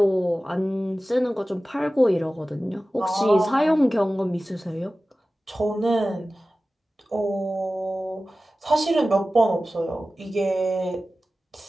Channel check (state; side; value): normal; both; correlation 0.96